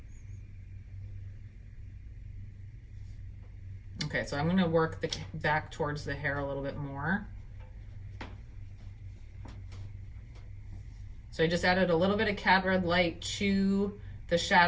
Okay, so I'm going to work the back towards the hair a little bit more. So I just added a little bit of Cad Red Light to the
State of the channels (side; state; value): both; identical; correlation 1.00